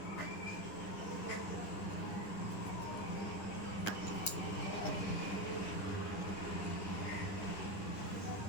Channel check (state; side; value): late; right; 10 ms